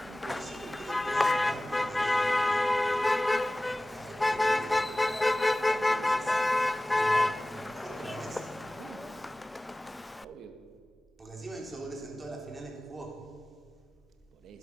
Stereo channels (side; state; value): both; normal; correlation 0.98